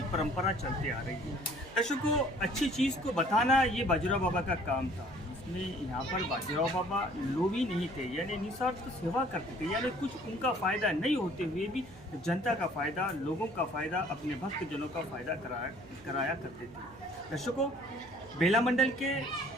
परंपरा चलते आ रही है। दर्शकों, अच्छी चीज़ को बताना ये बाजीराव बाबा का काम था। इसमें यहाँ पर बाजीराव बाबा लोभी नहीं थे, यानी निस्वार्थ सेवा करते थे, यानी कुछ उनका फ़ायदा नहीं होते हुए भी जनता का फ़ायदा, लोगों का फ़ायदा, अपने भक्तजनों का फ़ायदा कराया करते थे। दर्शकों, बेला मंडल के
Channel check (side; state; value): right; noise; hum, 20 dB below the sound